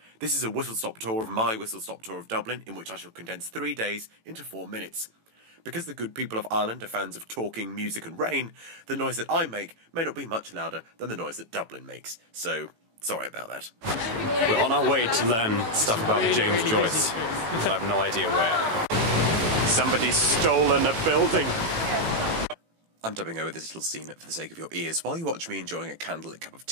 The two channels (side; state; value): left; late; 18 ms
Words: This is a whistle-stop tour of my whistle-stop tour of Dublin, in which I shall condense 3 days into 4 minutes. Because the good people of Ireland are fans of talking, music and rain, the noise that I make may not be much louder than the noise that Dublin makes, so sorry about that. We're on our way to learn stuff about James Joyce, but I have no idea where. Somebody's stolen a building. I'm dubbing over this little scene for the sake of your ears. While you watch me enjoying a candlelit cup of